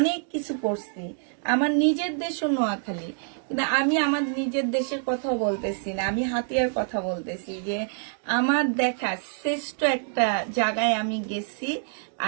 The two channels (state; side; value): silent; left; digital silence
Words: কিছু করছি। আমার নিজের দেশও নোয়াখালী, কিন্তু আমি আমার নিজের দেশের কথা বলতেছি না, আমি হাতিয়ার কথা বলতেছি। যে আমার দেখা শ্রেষ্ঠ একটা জায়গায় আমি গেছি,